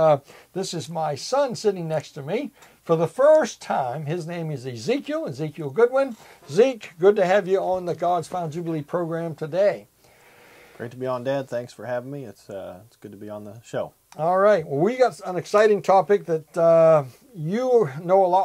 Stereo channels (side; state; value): both; identical; correlation 1.00